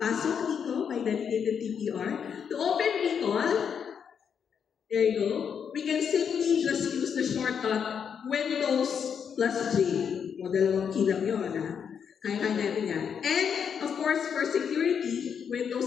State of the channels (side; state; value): right; quieter; 7.3 dB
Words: dito by dedicated TPR. To open Recall, there you go. We can simply just use the shortcut Windows plus J. O dalawang key lang yun, ha? Kaya natin yan. And, of course, for security, Windows